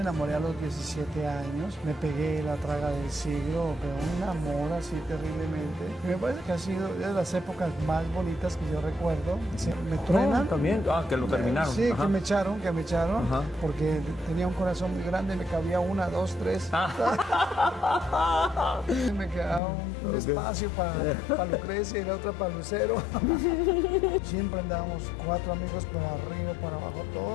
a los 17 años, me pegué la traga del siglo, pero un amor así terriblemente. Y me parece que ha sido de las épocas más bonitas que yo recuerdo. Me truenan. También. Que lo terminaron. Sí, Ajá. que me echaron, Ajá. porque tenía un corazón muy grande, me cabía 1, 2, 3. Me quedaba un espacio para Lucrecia y la otra para Lucero. Siempre andábamos 4 amigos para arriba, para abajo,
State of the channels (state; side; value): drops out; right; at 19.6 s